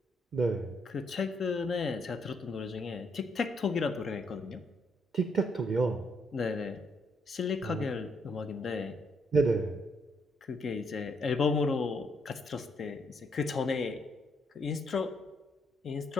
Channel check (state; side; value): normal; both; correlation 0.73